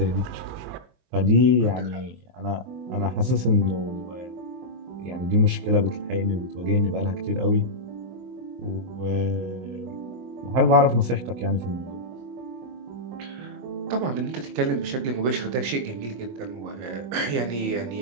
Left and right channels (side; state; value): left; late; 23 ms